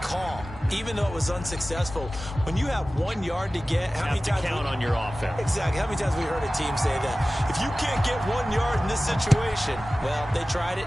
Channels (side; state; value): both; normal; correlation 0.96